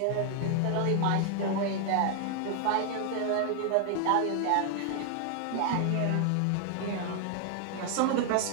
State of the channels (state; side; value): different; both; correlation 0.00